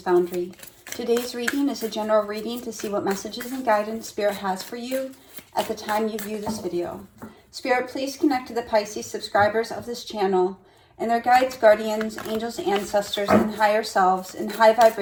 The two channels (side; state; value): both; identical; correlation 1.00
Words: Today's reading is a general reading to see what messages and guidance Spirit has for you at the time you view this video. Spirit, please connect to the Pisces subscribers of this channel and their guides, guardians, angels, ancestors, and higher selves in high